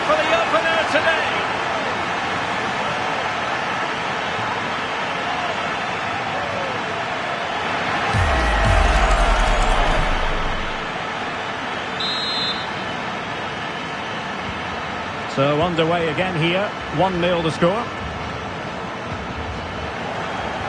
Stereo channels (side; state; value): both; identical; correlation 1.00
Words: for the opener today. So underway again here, 1-0 the score.